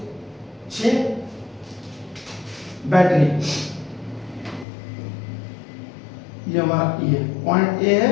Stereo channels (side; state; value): right; drops out; at 4.7 s